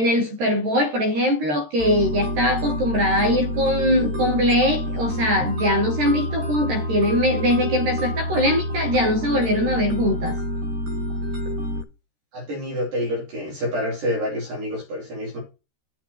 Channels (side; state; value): left; late; 13 ms